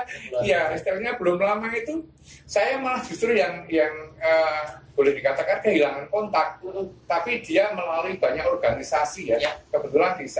Iya, istilahnya belum lama itu saya malah justru yang boleh dikatakan kehilangan kontak, tapi dia melalui banyak organisasi ya. Kebetulan di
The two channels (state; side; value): identical; both; correlation 1.00